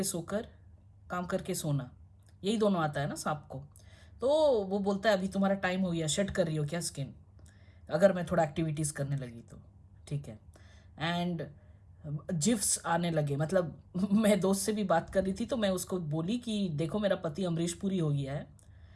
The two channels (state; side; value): identical; both; correlation 1.00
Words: सोकर, काम करके सोना, यही दोनों आता है ना सांप को। तो वो बोलता है अभी तुम्हारा टाइम हो गया, शेड कर रही हो क्या स्किन? अगर मैं थोड़ा एक्टिविटीज़ करने लगी तो ठीक है। एंड जिफ्स आने लगे, मतलब मैं दोस्त से भी बात कर रही थी तो मैं उसको बोली कि देखो मेरा पति अमरीश पुरी हो गया है